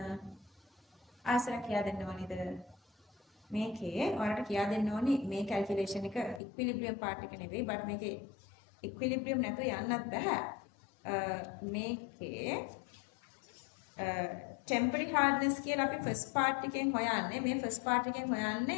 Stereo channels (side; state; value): right; drops out; at 6.4 s